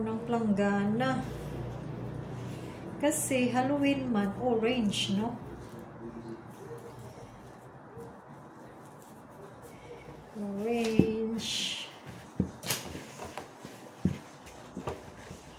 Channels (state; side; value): identical; both; correlation 1.00